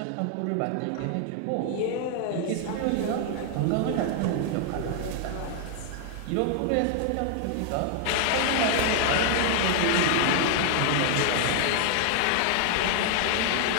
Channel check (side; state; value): both; different; correlation 0.00